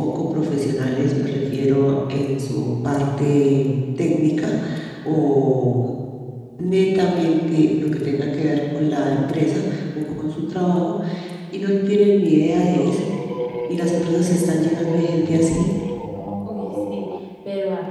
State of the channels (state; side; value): identical; both; correlation 1.00